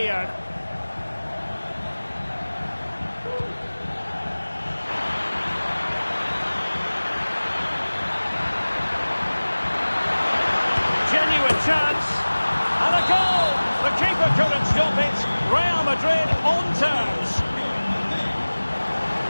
Genuine chance. And a goal! The keeper couldn't stop it. Real Madrid on terms.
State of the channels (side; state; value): both; inverted; correlation -1.00